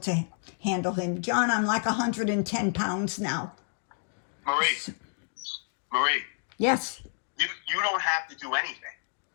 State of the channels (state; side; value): silent; right; digital silence